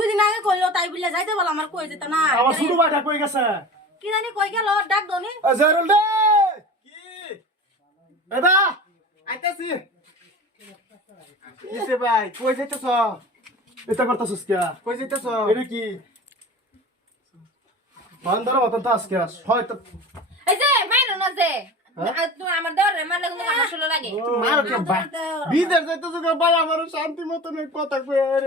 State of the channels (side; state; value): both; normal; correlation 0.35